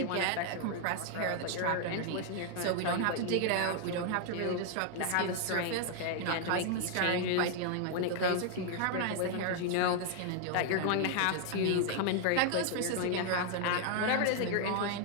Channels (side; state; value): both; different; correlation 0.00